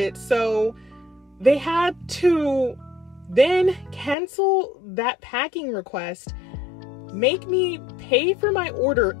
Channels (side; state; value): right; drops out; at 4.2 s